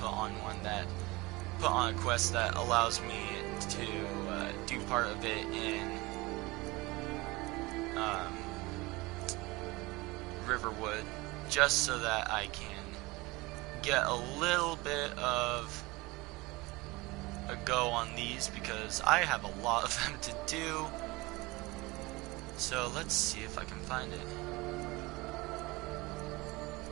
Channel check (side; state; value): left; quieter; 22.6 dB